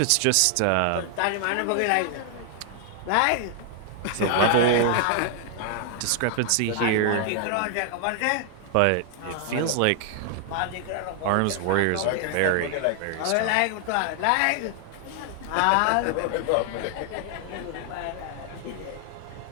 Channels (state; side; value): different; both; correlation 0.00